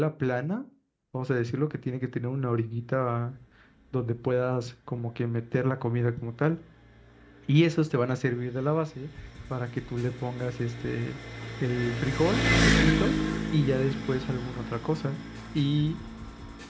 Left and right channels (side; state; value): both; identical; correlation 1.00